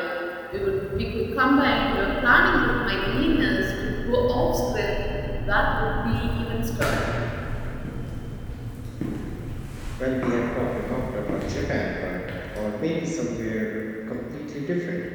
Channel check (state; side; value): identical; both; correlation 1.00